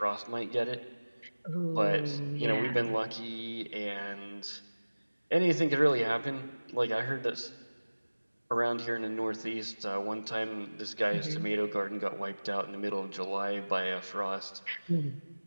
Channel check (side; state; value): both; inverted; correlation -1.00